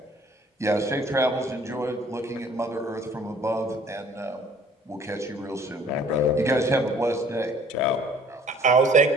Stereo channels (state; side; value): normal; both; correlation 0.54